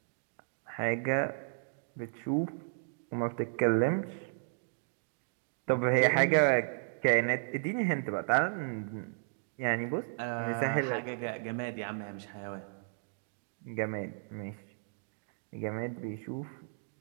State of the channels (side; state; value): left; silent; digital silence